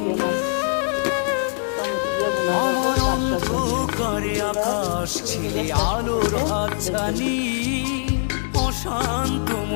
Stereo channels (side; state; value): right; silent; digital silence